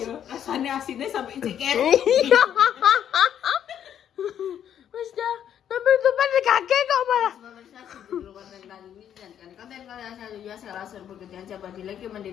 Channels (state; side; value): quieter; right; 9.6 dB